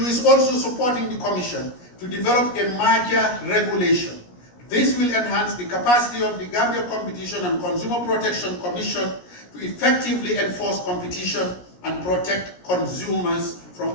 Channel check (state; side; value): late; right; 17 ms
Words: is also supporting the Commission to develop a merger regulation. This will enhance the capacity of the Gambia Competition and Consumer Protection Commission to effectively enforce competition and protect consumers